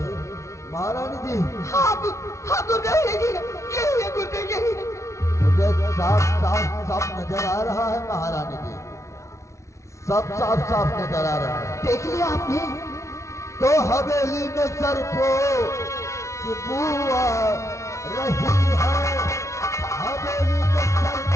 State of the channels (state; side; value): late; right; 0.14 ms